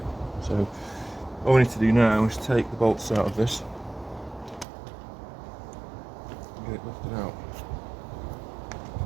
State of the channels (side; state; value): left; drops out; at 4.7 s